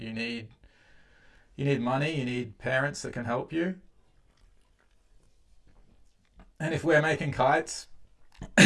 need money, you need parents that can help you. And if we're making kites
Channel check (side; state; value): both; identical; correlation 1.00